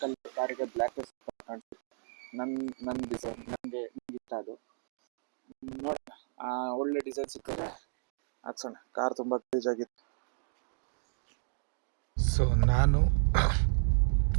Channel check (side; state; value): left; silent; digital silence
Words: ಕಲರ್ ಕಾರಿಗೆ ಬ್ಲ್ಯಾಕ್ ಕಾಣಿಸುತ್ತೆ. ನನ್ನ ಡಿಸೈನ್ ನನಗೆ ಇಷ್ಟ. ಅದು ನೋಡೋಣ, ಒಳ್ಳೆ ಡಿಸೈನ್ ಸಿಕ್ಕಿದ್ರೆ ಹಾಕ್ಸೋಣ. ಕಾರ್ ತುಂಬ ಗಲೀಜಾಗಿತ್ತು. ಸೊ ನಾನು